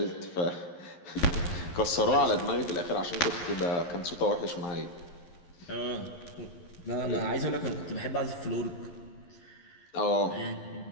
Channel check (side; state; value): right; late; 11 ms